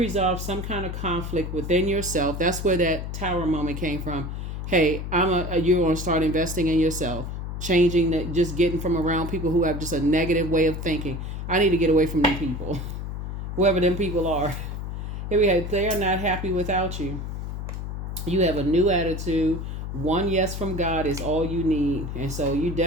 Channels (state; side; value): noise; left; hum, 5 dB below the sound